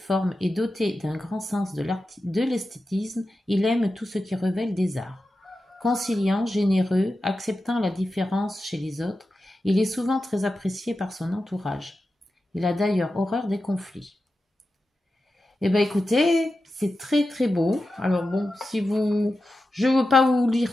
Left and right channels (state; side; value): normal; both; correlation 0.92